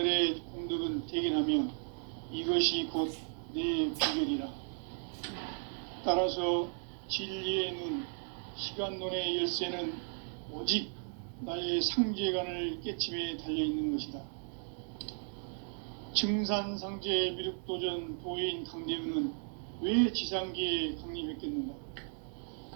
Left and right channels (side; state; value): left; silent; 54 dB below the other